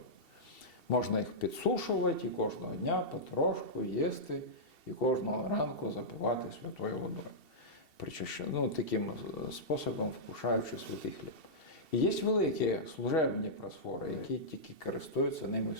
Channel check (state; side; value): late; right; 2.7 ms